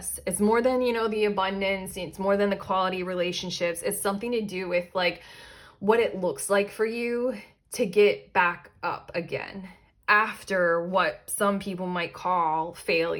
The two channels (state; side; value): identical; both; correlation 1.00